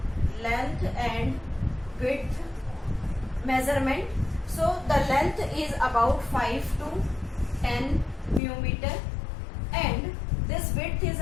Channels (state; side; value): drops out; right; at 8.4 s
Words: length and width measurement. So the length is about 5 to 10 millimeter and this width is